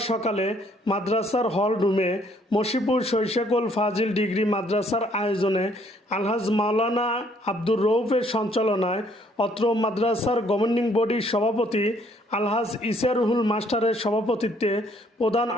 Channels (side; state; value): both; normal; correlation 0.65